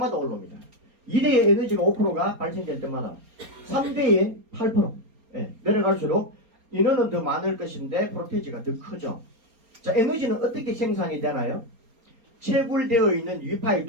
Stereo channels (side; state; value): left; late; 4.3 ms